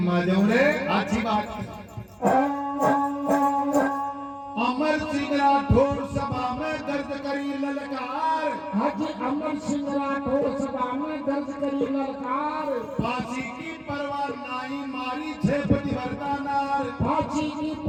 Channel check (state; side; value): identical; both; correlation 1.00